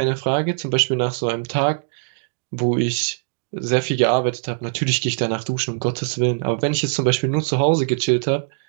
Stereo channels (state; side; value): silent; left; digital silence